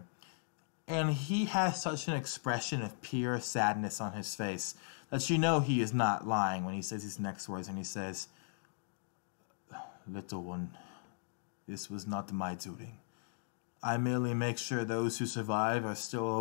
And he has such an expression of pure sadness on his face that you know he is not lying when he says his next words. And he says, "Little one, this was not my doing. I merely make sure those who survive are still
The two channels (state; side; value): silent; right; digital silence